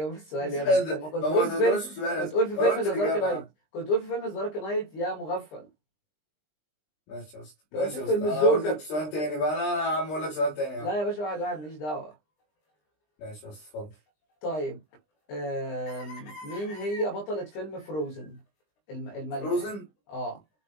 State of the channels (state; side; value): late; right; 20 ms